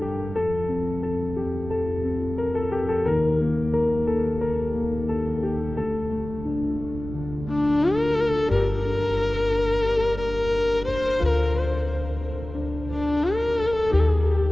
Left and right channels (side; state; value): right; noise; rumble, 12 dB below the sound